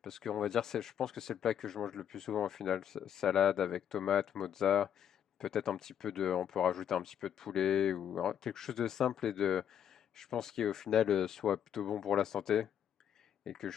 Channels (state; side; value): quieter; right; 9.3 dB